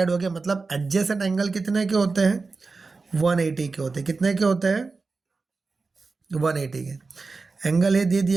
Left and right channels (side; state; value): left; quieter; 4.1 dB